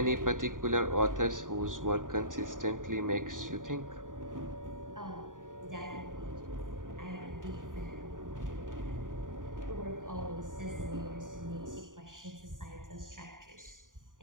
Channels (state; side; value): late; left; 0.89 ms